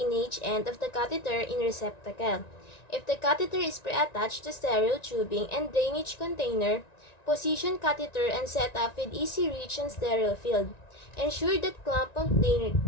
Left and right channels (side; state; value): right; late; 1.9 ms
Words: end of the catheter in receptacle. If the catheter is pre-attached to sterile tubing and drainage container, position catheter and set up with easy reach and sterile field. Ensure that clamp of